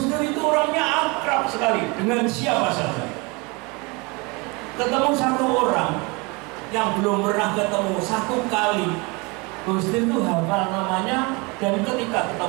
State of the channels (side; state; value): left; quieter; 27.9 dB